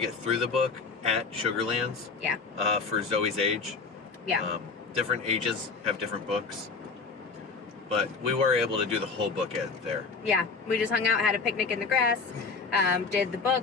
through the book at Sugarlands. Yeah. For Zoey's age. Yeah. Different ages have different books. But we were able to do the whole book there. Yeah, we just hung out, had a picnic in the grass, did the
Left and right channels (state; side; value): quieter; right; 4.7 dB